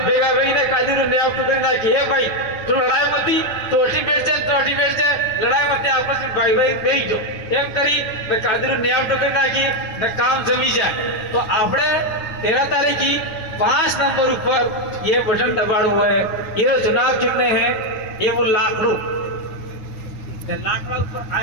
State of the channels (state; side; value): late; right; 10 ms